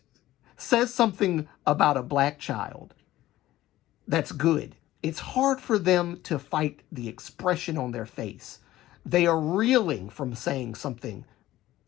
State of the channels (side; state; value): right; quieter; 15.2 dB